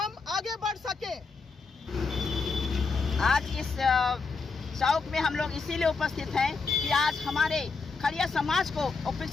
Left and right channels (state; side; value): quieter; right; 4.6 dB